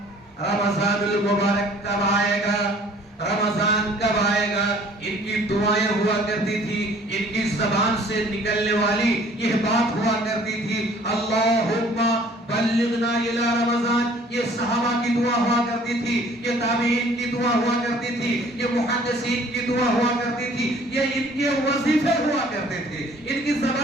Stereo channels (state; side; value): normal; both; correlation 0.54